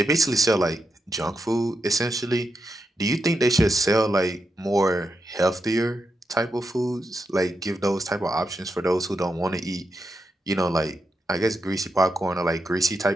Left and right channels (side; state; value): both; normal; correlation 0.86